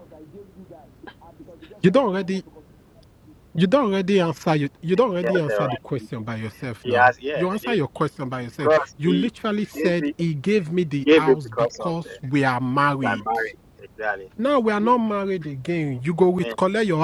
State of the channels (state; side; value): identical; both; correlation 1.00